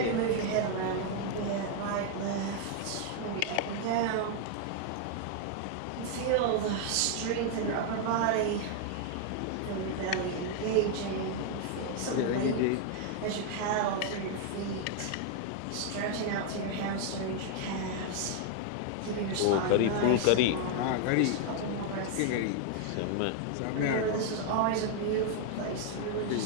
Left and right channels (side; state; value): both; different; correlation 0.00